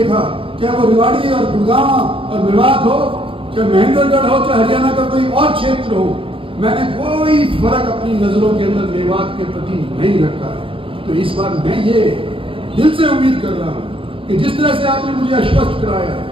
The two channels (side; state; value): left; late; 0.26 ms